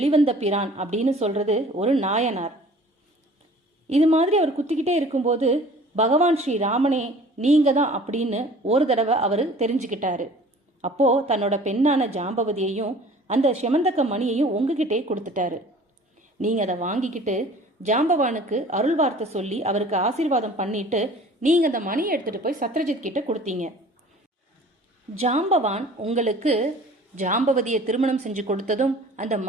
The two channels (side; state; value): both; normal; correlation 0.48